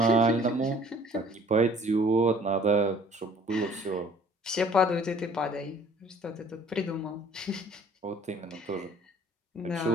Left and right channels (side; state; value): both; normal; correlation 0.54